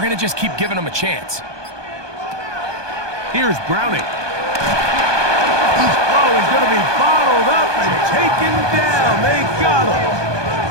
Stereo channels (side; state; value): left; late; 1.2 ms